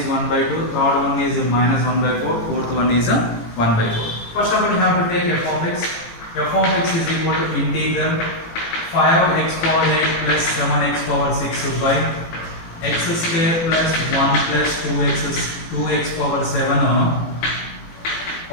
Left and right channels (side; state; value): right; late; 18 ms